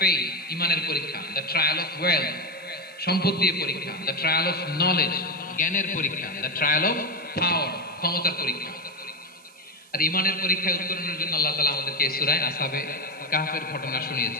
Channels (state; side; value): noise; right; hiss, 26 dB below the sound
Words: ফেইথ, ঈমানের পরীক্ষা; দ্য ট্রায়াল অফ ওয়েলথ, সম্পদ দিয়ে পরীক্ষা; দ্য ট্রায়াল অফ নলেজ, জ্ঞানের পরীক্ষা; দ্য ট্রায়াল অফ পাওয়ার, ক্ষমতার পরীক্ষা। আর ঈমানের পরীক্ষায় উত্তরণের জন্য আল্লাহ তাআলা আমাদেরকে এই সূরায় আসহাবে কাহফের ঘটনা